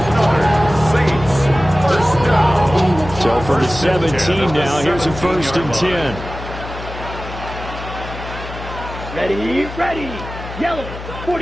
So for the 17 now, here's a 1st and 10. Ready, ready. Yellow,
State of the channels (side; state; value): left; noise; hum, 11 dB below the sound